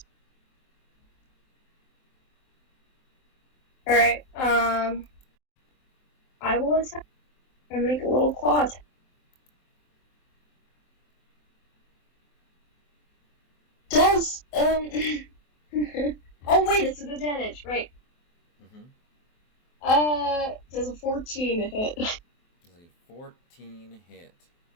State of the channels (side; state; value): right; late; 23 ms